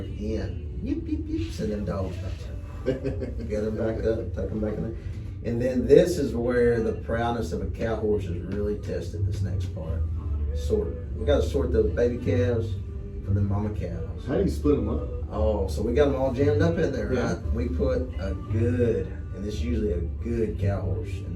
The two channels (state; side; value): identical; both; correlation 1.00